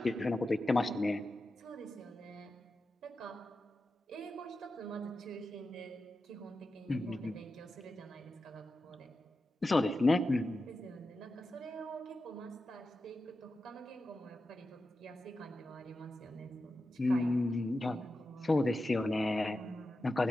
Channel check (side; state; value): both; normal; correlation 0.91